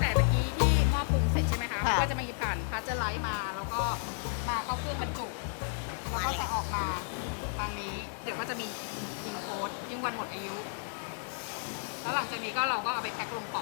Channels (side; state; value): right; silent; 56 dB below the other